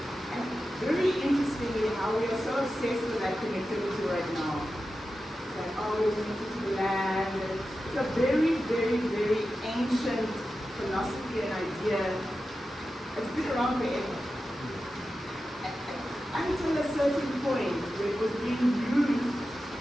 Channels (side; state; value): both; normal; correlation 0.92